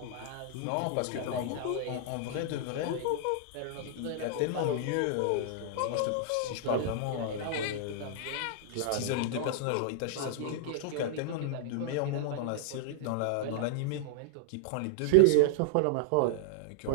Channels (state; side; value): different; both; correlation -0.01